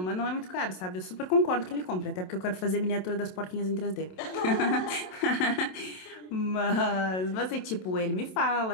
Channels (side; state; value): right; late; 27 ms